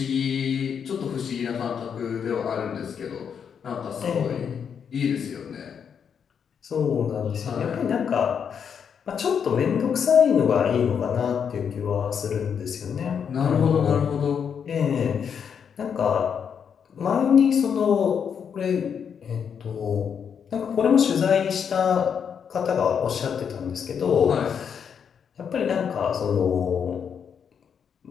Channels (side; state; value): right; quieter; 7.3 dB